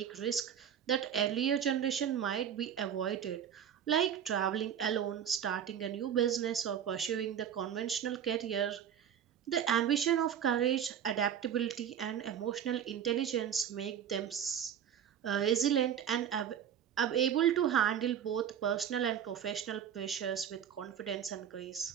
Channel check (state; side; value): quieter; left; 9.0 dB